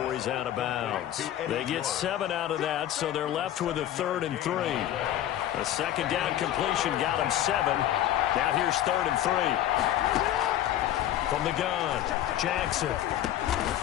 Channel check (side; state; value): right; quieter; 12.3 dB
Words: he's out of bounds. They get 7 out of that, so they're left with a 3rd and 3. The 2nd down completion got him 7. Now here's 3rd and 3. From the gun, Jackson.